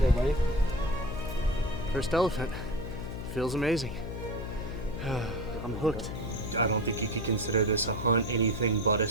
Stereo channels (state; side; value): noise; left; hum, 7 dB below the sound